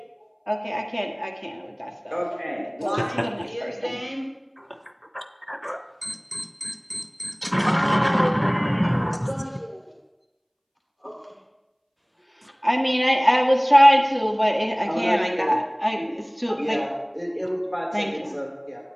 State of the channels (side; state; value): both; identical; correlation 1.00